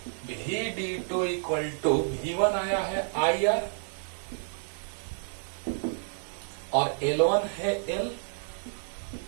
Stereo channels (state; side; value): silent; left; 58 dB below the other